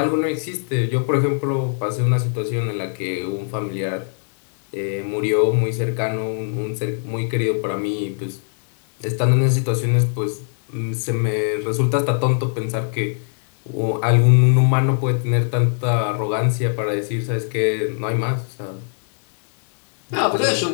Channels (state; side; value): silent; right; 65 dB below the other